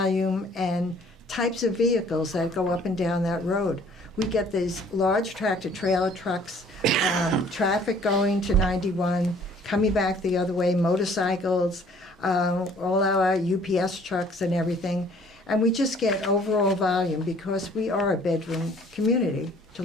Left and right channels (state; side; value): normal; both; correlation 0.56